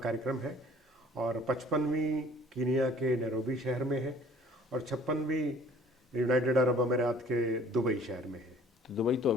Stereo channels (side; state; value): both; normal; correlation 0.53